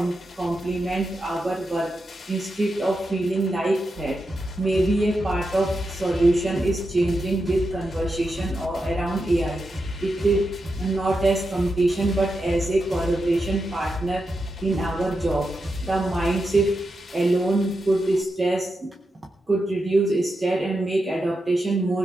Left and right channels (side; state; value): both; normal; correlation 0.87